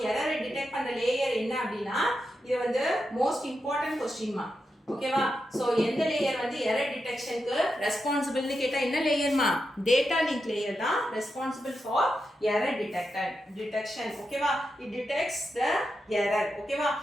error டிடெக்ட் பண்ற லேயர் என்ன அப்படினா இது வந்து மோஸ்ட் இம்பார்ட்டன்ட் क्वेश्चन மா. ஓகேவா? சோ எந்த லேயர் வந்து எரர் டிடெக்ஷனுக்கு ரெஸ்பான்சிபிள்னு கேட்டா என்ன லேயர்மா? டேட்டா லிங்க் லேயர் தான் ரெஸ்பான்சிபிள் ஃபார் எரர் டிடெக்ஷன். ஓகேவா? It detects the error. ஓகேவா?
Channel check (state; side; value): normal; both; correlation 0.87